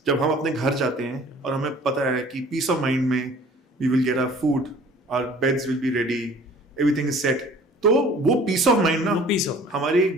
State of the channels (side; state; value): both; normal; correlation 0.50